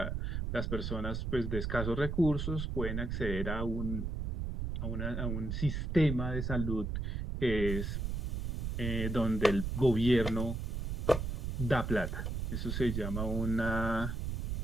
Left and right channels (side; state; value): right; noise; rumble, 2 dB below the sound